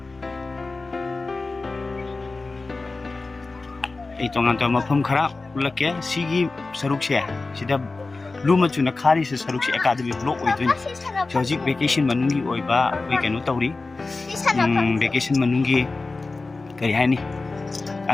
Itong aton mapam khara, ulak ya, sigi saruk siya. Sida luma chuna khari se saruk siya academy block oidun. Hojik vacation manungi oiba koi kanu tawri vacation manungi kari haini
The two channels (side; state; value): right; quieter; 3.6 dB